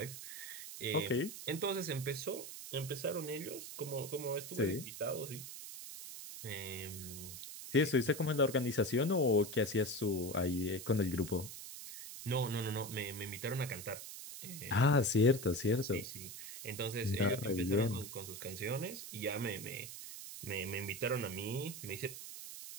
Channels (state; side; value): noise; right; hiss, 10 dB below the sound